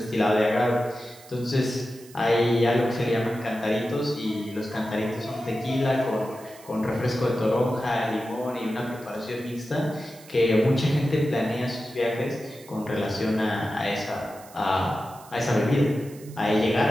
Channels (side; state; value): right; noise; hiss, 22 dB below the sound